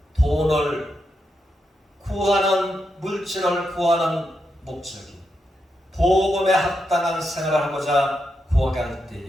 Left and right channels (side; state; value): both; normal; correlation 0.84